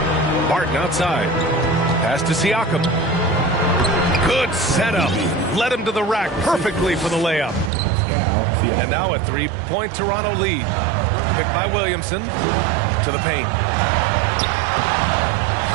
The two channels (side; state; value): left; drops out; at 7.7 s